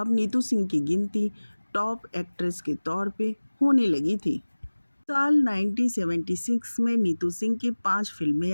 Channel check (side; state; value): both; inverted; correlation -1.00